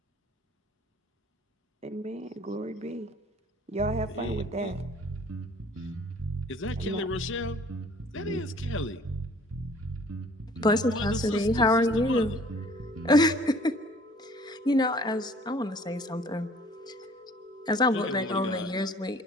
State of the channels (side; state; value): both; normal; correlation 0.54